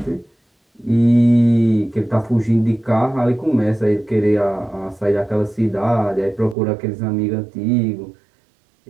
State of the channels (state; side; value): drops out; left; at 6.6 s